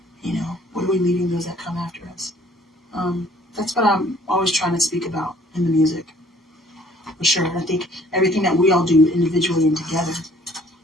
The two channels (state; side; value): normal; both; correlation 0.58